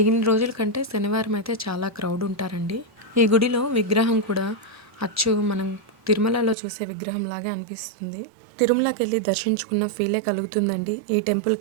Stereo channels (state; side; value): drops out; left; at 6.6 s